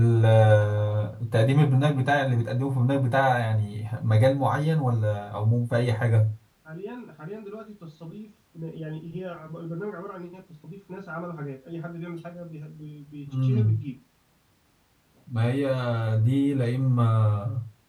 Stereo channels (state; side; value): identical; both; correlation 1.00